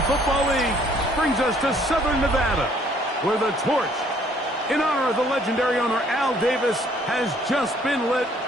Football League brings us to Southern Nevada, where the torch, in honor of the legendary owner Al Davis, has just been lit,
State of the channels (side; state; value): both; normal; correlation 0.62